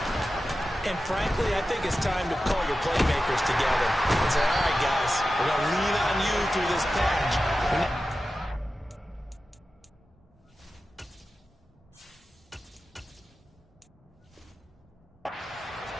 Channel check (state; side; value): normal; both; correlation 0.93